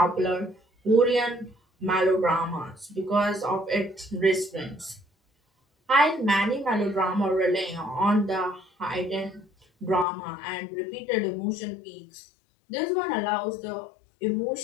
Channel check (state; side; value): drops out; right; at 10.1 s